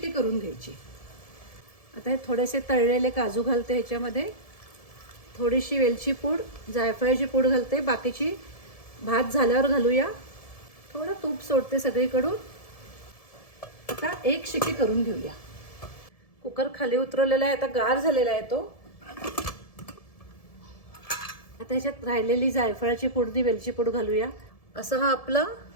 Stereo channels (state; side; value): late; right; 1.7 ms